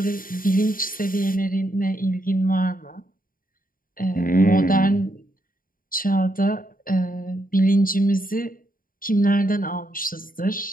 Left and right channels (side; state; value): right; late; 0.41 ms